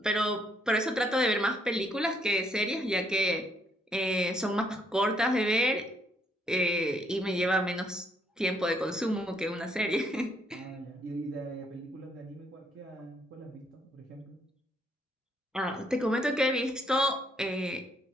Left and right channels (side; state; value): both; normal; correlation 0.71